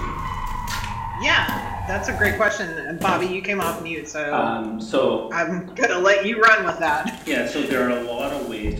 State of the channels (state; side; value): identical; both; correlation 1.00